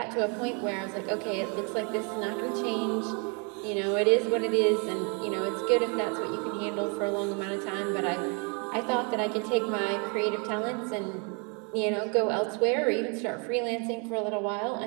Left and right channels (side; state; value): left; quieter; 35.0 dB